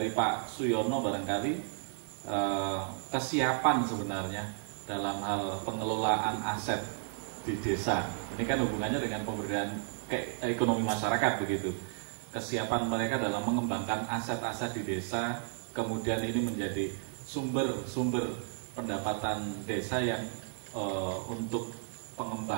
Pak Suyono barangkali kesiapan sebenarnya dalam hal pengelolaan aset di desa. Ini kan hubungannya dengan pemberdayaan ekonomi masyarakat begitu. Kesiapan mereka dalam mengembangkan aset-aset di desa, kemudian ini menjadi sumber pendapatan desa yang untuk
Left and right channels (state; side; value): silent; left; digital silence